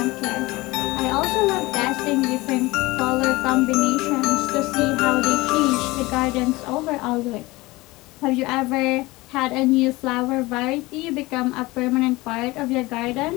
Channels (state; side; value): quieter; right; 21.2 dB